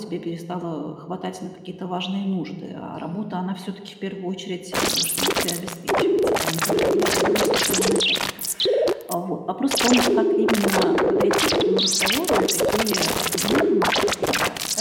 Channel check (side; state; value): both; identical; correlation 1.00